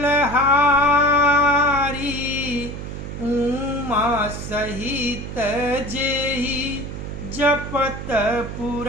हारी, उमा सहित जेहि जपत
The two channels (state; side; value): noise; right; hum, 8 dB below the sound